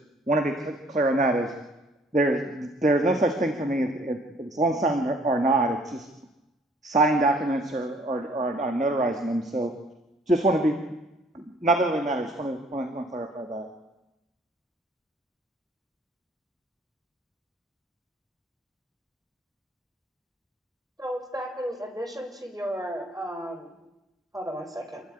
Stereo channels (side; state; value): both; normal; correlation 0.59